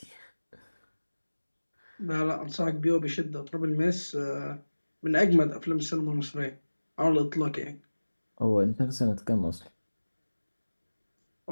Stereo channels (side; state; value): both; inverted; correlation -1.00